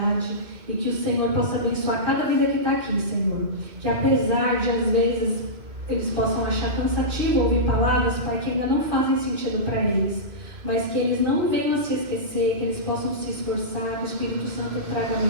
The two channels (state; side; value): late; left; 2.3 ms